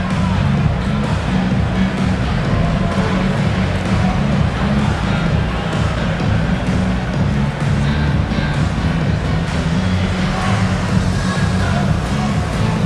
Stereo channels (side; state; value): both; identical; correlation 1.00